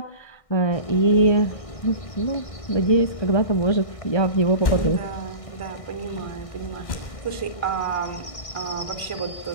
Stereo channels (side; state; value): right; late; 1.6 ms